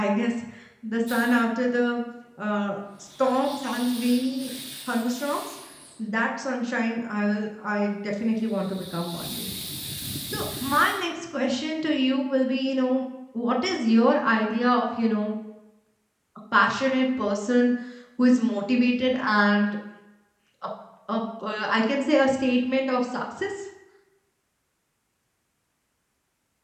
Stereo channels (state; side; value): identical; both; correlation 1.00